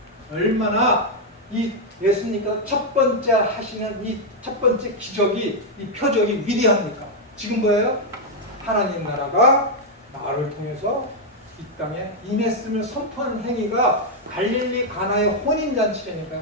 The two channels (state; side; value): normal; both; correlation -0.01